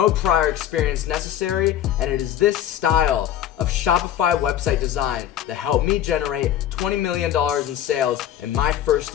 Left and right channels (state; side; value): quieter; right; 11.0 dB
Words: prior experience necessary, and it is this style of Shopify website design that helped me generate $20 million in sales in my first